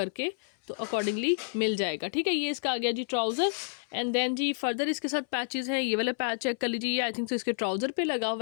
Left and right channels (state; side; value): silent; right; 58 dB below the other